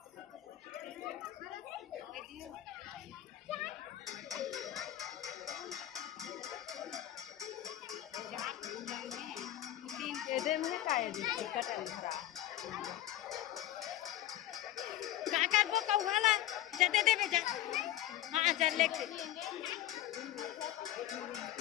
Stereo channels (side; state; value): right; quieter; 13.6 dB